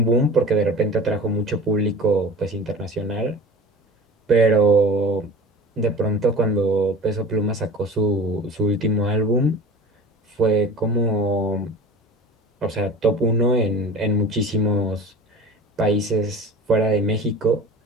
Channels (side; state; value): both; normal; correlation 0.37